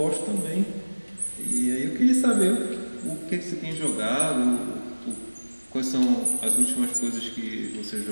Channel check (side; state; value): both; inverted; correlation -1.00